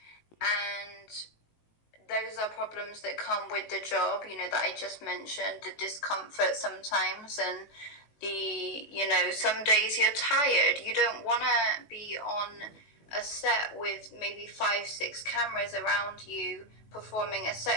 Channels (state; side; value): late; right; 19 ms